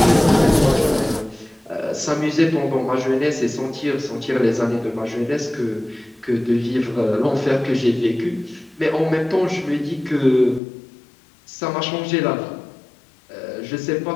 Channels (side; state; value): right; drops out; at 10.6 s